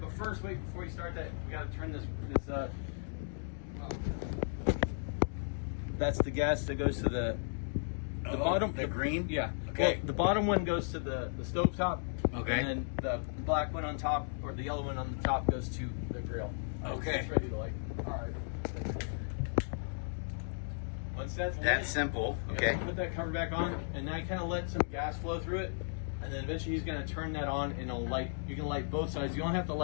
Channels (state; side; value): silent; right; digital silence